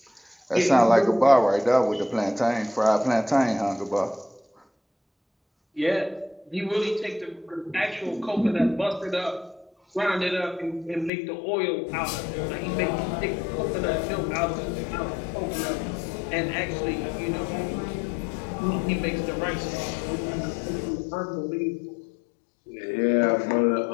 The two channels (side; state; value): right; drops out; at 11.1 s